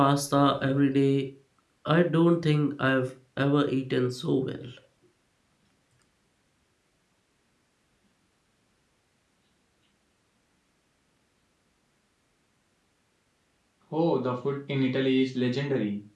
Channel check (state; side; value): identical; both; correlation 1.00